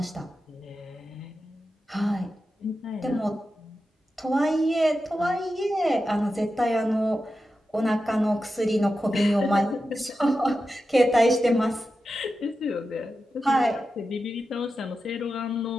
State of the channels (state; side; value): normal; both; correlation 0.91